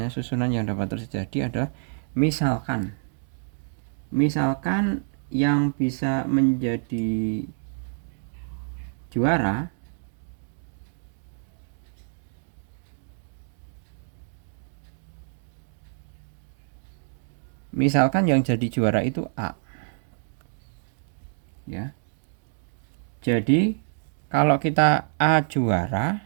susunan yang dapat terjadi adalah misalkan yang bisa menjadi juara itu A ya. Jadi kalau kita A juara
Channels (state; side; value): silent; left; 60 dB below the other